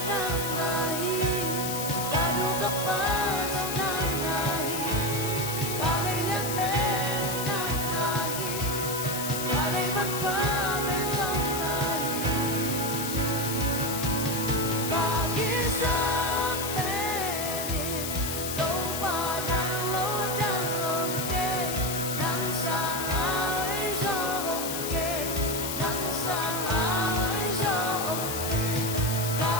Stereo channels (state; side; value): noise; left; hiss, 4 dB below the sound